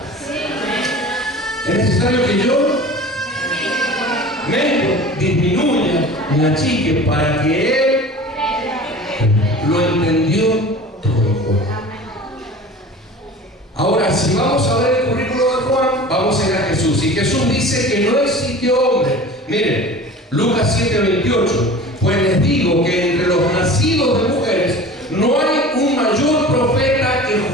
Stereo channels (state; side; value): normal; both; correlation 0.39